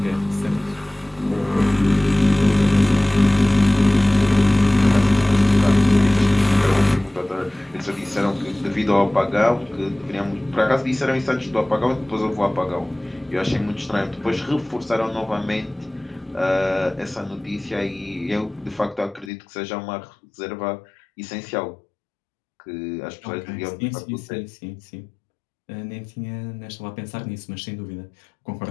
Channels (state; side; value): drops out; right; at 19.3 s